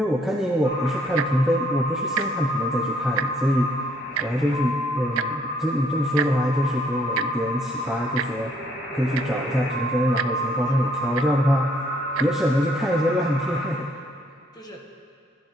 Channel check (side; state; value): both; normal; correlation 0.66